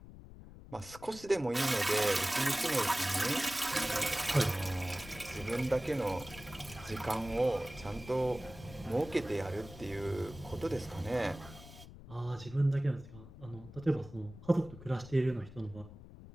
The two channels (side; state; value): left; noise; rumble, 16 dB below the sound